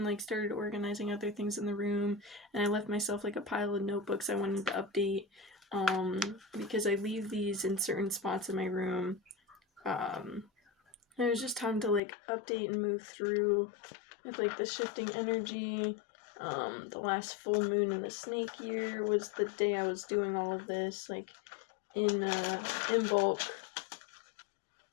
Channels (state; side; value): drops out; right; at 12.0 s